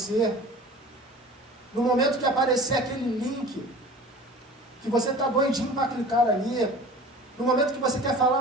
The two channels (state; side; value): normal; both; correlation 0.41